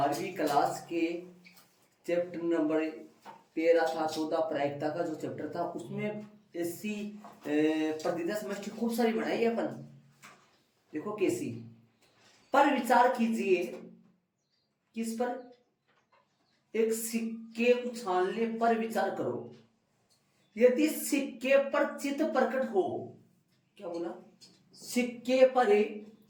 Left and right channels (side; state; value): both; identical; correlation 1.00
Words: क्लास के चैप्टर नंबर 13 था, 14 प्रायिकता का जो चैप्टर था उसमें ऐसी प्रतिदिन समष्टि खूब सारी बनाई है अपन। देखो कैसी, पर विचार कीजिए। किस पर? एक सिक्के उछालने पर विचार करो। यदि सिक्के पर चित्त प्रकट हो, क्या बोला? सिक्के पर